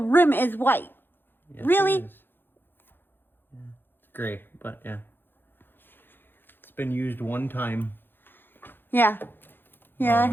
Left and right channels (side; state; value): right; late; 0.099 ms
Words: is white. Yes, Really? it is. Yeah, it's gray, but yeah, it's been used one time. Yeah, it